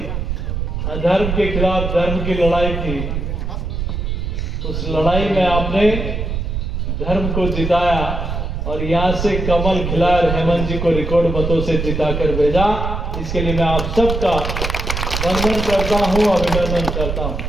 अधर्म के खिलाफ धर्म की लड़ाई थी, उस लड़ाई में आपने धर्म को जिताया और यहां से कमल खिलाकर हेमंत जी को रिकॉर्ड मतों से जिताकर भेजा। इसके लिए मैं आप सबका वंदन करता हूं, अभिनंदन करता हूं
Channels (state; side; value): noise; right; rumble, 3 dB below the sound